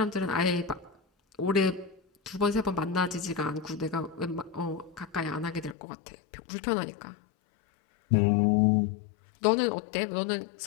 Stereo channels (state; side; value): drops out; right; at 5.8 s